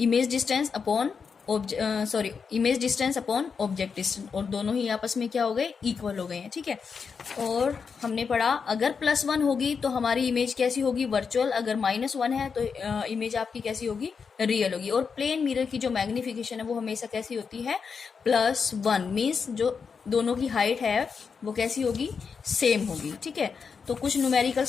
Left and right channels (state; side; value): quieter; right; 5.8 dB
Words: distance upon image distance upon object distance, और दोनों ही आपस में क्या हो गए, इक्वल हो गए हैं। ठीक है, और हमने पढ़ा अगर +1 होगी तो हमारी इमेज कैसी होगी, वर्चुअल। अगर -1 है तो इमेज आपकी कैसी होगी, रियल होगी। और प्लेन मिरर की जो मैग्निफिकेशन है वो हमेशा कैसी होती है, +1, मीन्स जो दोनों की हाइट है वो कैसी होगी, सेम होगी। ठीक है, तो कुछ